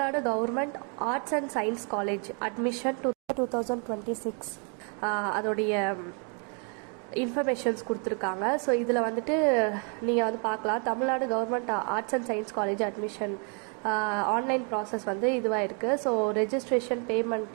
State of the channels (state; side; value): quieter; left; 38.9 dB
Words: government arts and science college admission 2026 அதோடைய இன்ஃபர்மேஷன்ஸ் கொடுத்துருக்காங்க. ஸோ இதில் வந்துட்டு நீங்கள் வந்து பார்க்கலாம், Tamil Nadu government arts and science college admission online process வந்து இதுவாக இருக்குது. ஸோ ரெஜிஸ்ட்ரேஷன்